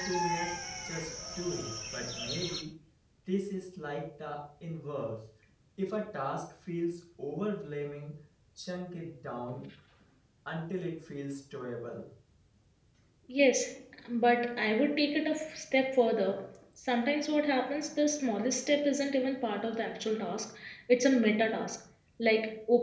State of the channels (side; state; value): both; identical; correlation 1.00